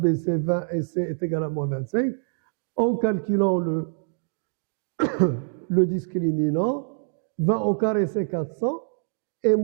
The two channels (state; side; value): silent; left; digital silence